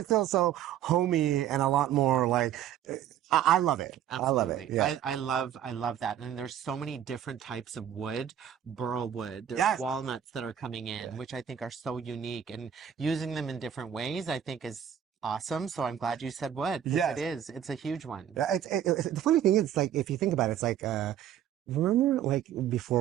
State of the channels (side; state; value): left; quieter; 9.9 dB